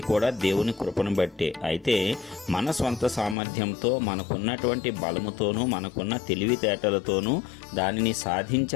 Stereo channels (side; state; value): right; drops out; at 3.4 s